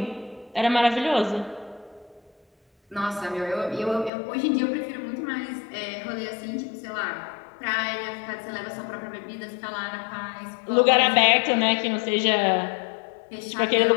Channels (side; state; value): right; drops out; at 4.1 s